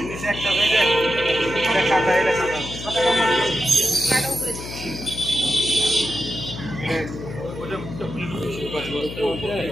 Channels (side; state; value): left; noise; hum, 10 dB below the sound